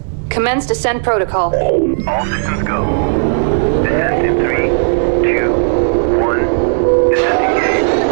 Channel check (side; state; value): left; silent; digital silence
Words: commence descent protocol. All systems go. Descent in 3, 2, 1. Descent